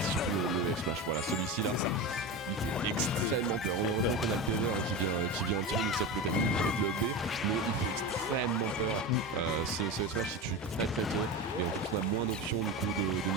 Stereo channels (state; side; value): normal; both; correlation 0.23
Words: c'est surtout le F-Smash. Voilà, celui-ci là, il fait extrêmement peur. Heureusement qu'on a le PV qui vient un petit peu nous sape le timing avec le B, mais il fait extrêmement peur. Ce Smash il tue très très tôt, et en plus on a moins d'options du coup de